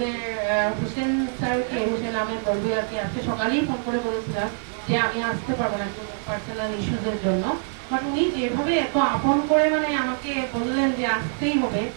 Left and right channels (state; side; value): silent; left; 59 dB below the other